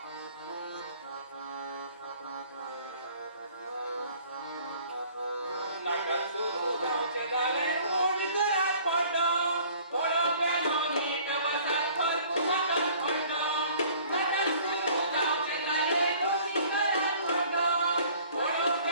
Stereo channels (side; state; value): both; inverted; correlation -0.53